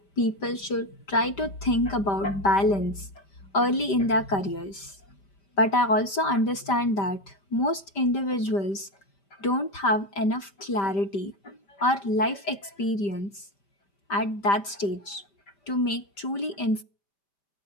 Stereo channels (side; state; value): right; late; 5.1 ms